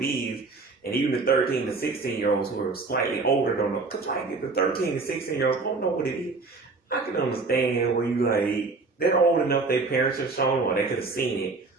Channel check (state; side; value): quieter; left; 3.9 dB